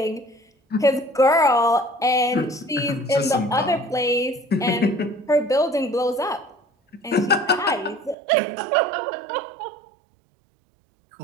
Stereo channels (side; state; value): left; drops out; at 8.2 s